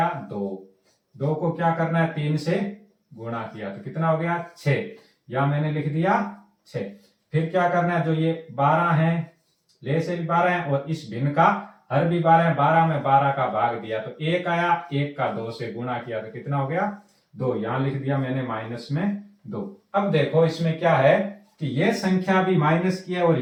2। 2 को क्या करना है 3 से गुणा किया तो कितना हो गया 6, या मैंने लिख दिया 6। फिर क्या करना है, जो ये 12 है, ले से भी 12 है और इस भिन्न का हर भी 12 है, 12 में 12 का भाग दिया तो 1 आया, 1 का 2 से गुणा किया तो कितना हो गया 2, यहां लिख दिया मैंने माइनस में 2। अब देखो इसमें क्या है कि ये संख्या भी माइनस की है और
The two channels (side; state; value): both; identical; correlation 1.00